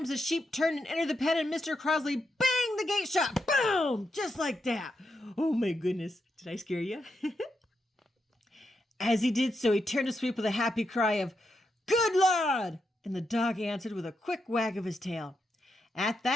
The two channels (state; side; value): normal; both; correlation 0.84